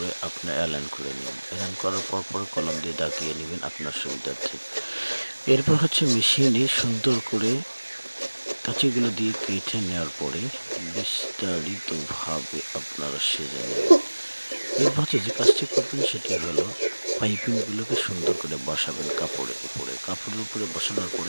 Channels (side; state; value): both; inverted; correlation -1.00